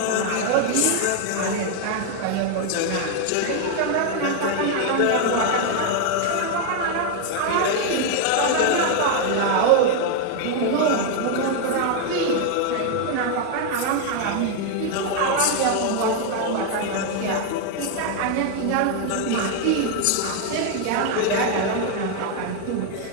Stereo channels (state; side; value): different; both; correlation 0.00